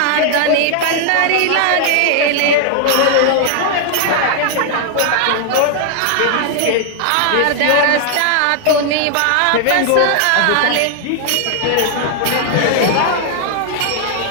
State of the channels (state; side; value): different; both; correlation 0.00